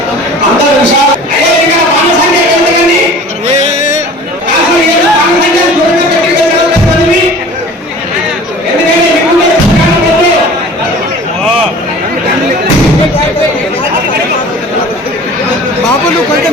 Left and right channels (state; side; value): normal; both; correlation 0.43